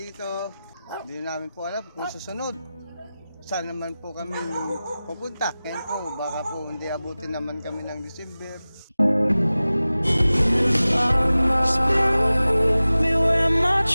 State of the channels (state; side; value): inverted; both; correlation -0.97